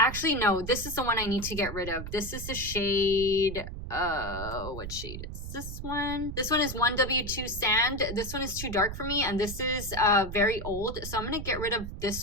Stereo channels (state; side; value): noise; right; rumble, 8 dB below the sound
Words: no, this is the one I need to get rid of. This is the shade, what shade is this one? This one is 1W2 Sand. This one is too dark for me, and this is very old, so I'm gonna get rid of